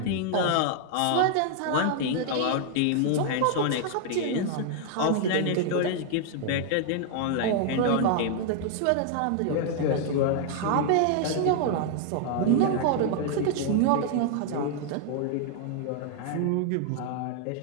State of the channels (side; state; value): both; different; correlation 0.00